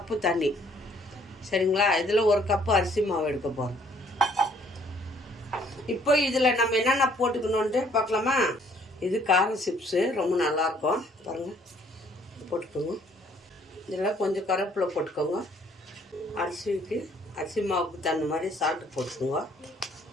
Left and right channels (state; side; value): normal; both; correlation 0.62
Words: தண்ணி, சரிங்களா? இதில் ஒரு கப்பு அரிசி மாவு எடுக்க போகிறோம். இப்போ இதில் நம்ம என்னென்ன போட்டுக்கணுன்ட்டு பார்க்கலாமா? இது காரம் சிப்ஸு, ரொம்ப நல்லாயிருக்கும். பாருங்கள், போட்டுக்கோங்க. இதில் கொஞ்சம் கருவேப்பிலை போட்டுக்கோங்க. அரிசி மாவுக்கு தகுந்த மாதிரி சால்ட்டு போட்டுக்கோங்க.